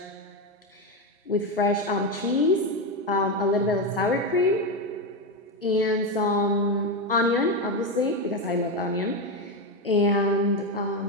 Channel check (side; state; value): both; normal; correlation 0.11